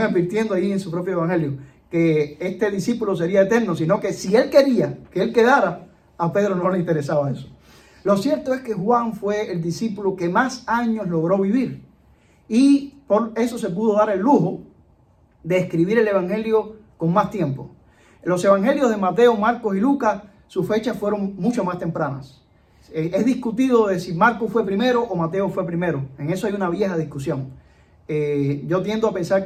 advirtiendo ahí en su propio evangelio, que este discípulo sería eterno, sino que si él quería que él quedara, a Pedro no le interesaba eso. Lo cierto es que Juan fue el discípulo que más años logró vivir, y por eso se pudo dar el lujo de escribir el evangelio con más tiempo. Los evangelios de Mateo, Marcos y Lucas, sus fechas fueron mucho más tempranas. Es discutido de si Marcos fue primero o Mateo fue primero. En eso hay una vieja discusión. Yo tiendo a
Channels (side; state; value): both; identical; correlation 1.00